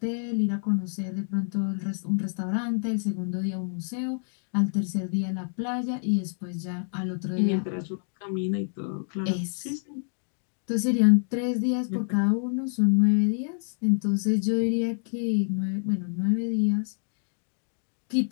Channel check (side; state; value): right; silent; digital silence